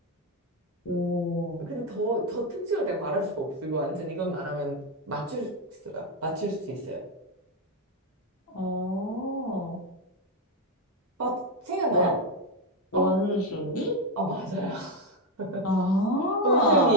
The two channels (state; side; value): normal; both; correlation 0.07